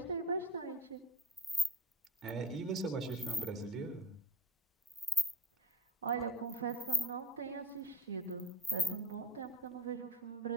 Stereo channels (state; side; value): normal; both; correlation 0.41